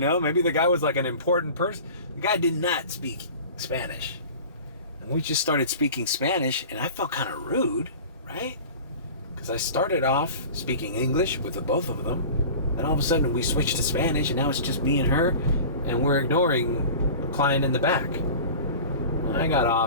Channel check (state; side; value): inverted; both; correlation -0.38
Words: Maybe the guy was like an important person. The guy did not speak Spanish. And we just started speaking Spanish, and I felt kind of rude, right? Because I started off speaking English with the both of them. Then all of a sudden we switched to Spanish, and now it's just me and her, and we're ignoring the client in the back. I got